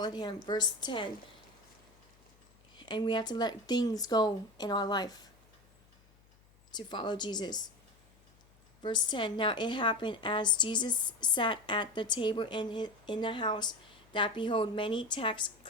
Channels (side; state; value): left; noise; hum, 30 dB below the sound